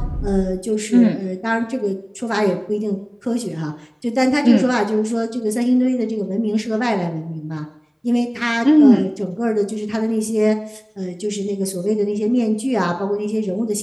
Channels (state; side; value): identical; both; correlation 1.00